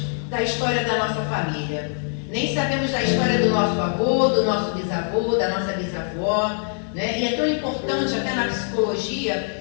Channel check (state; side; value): silent; right; 63 dB below the other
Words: da história da nossa família, nem sabemos da história do nosso avô, do nosso bisavô, da nossa bisavó, né? E é tão importante, até na